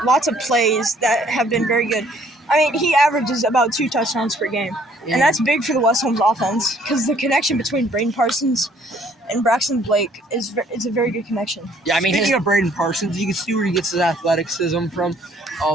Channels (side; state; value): both; normal; correlation 0.61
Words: lots of plays that have been very good. I mean, he averages about 2 touchdowns per game. And that's big for the West Holmes offense because the connection between Braden Parsons and Braxton Blake is a very good connection. Yeah, I mean, speaking of Braden Parsons, you can see where he gets his athleticism from.